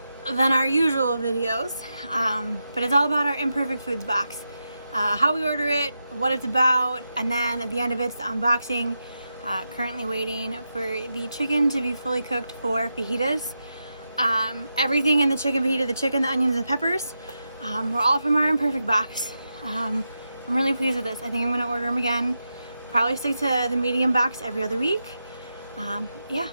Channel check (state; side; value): inverted; both; correlation -0.88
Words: than our usual videos, but it's all about our Imperfect Foods box. How we order it, what it's about, and then at the end of it's the unboxing. Currently waiting for the chicken to be fully cooked for fajitas. Everything in the chicken fajita, the chicken, the onions, and the peppers, were all from our Imperfect box. I'm really pleased with this. I think I'm gonna order them again. Probably stick to the medium box every other week. Yeah,